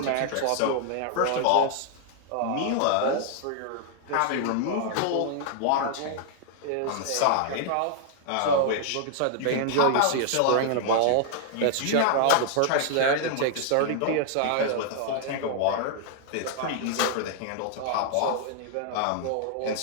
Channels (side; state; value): both; different; correlation -0.01